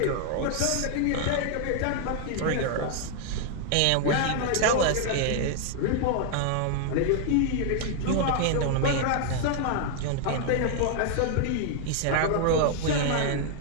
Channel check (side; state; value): both; different; correlation 0.00